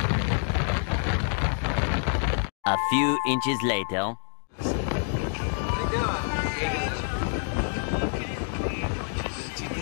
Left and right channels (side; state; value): right; silent; 60 dB below the other